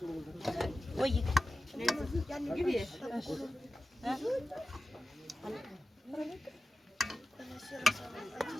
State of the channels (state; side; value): normal; both; correlation 0.94